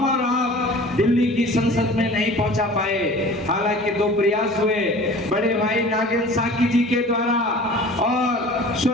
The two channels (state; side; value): normal; both; correlation 0.43